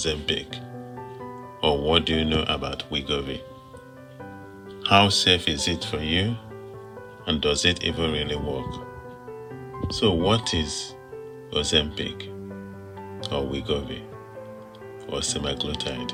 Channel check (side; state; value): both; identical; correlation 1.00